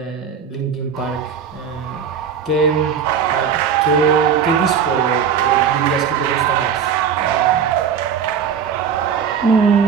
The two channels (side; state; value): left; quieter; 7.4 dB